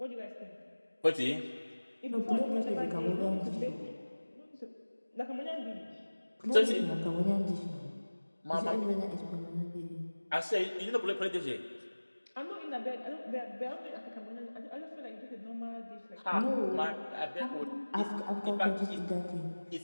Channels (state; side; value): inverted; both; correlation -1.00